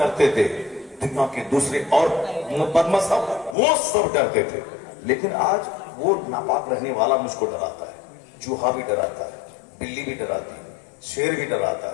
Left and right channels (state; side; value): drops out; right; at 3.6 s